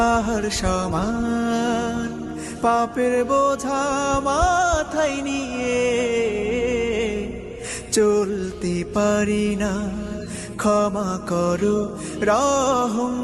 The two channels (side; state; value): both; identical; correlation 1.00